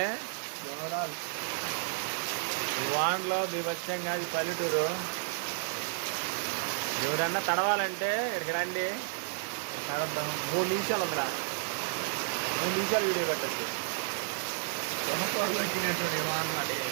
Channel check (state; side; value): silent; left; 57 dB below the other